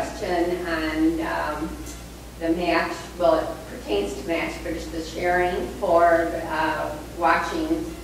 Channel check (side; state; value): both; identical; correlation 1.00